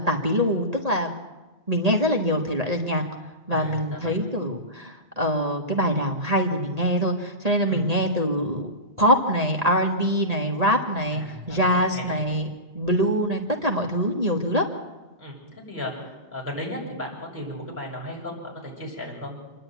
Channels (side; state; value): left; late; 1.8 ms